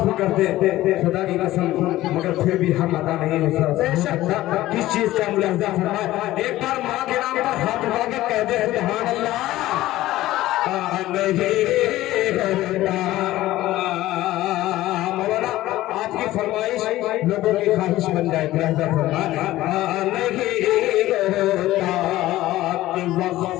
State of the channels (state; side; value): quieter; right; 15.9 dB